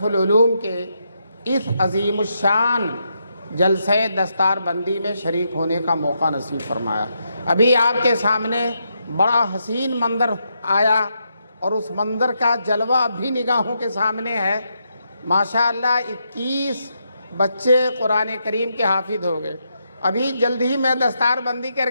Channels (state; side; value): inverted; both; correlation -0.81